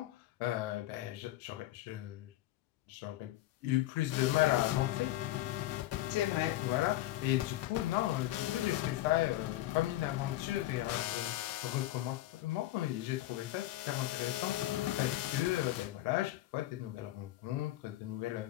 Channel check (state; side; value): quieter; right; 15.4 dB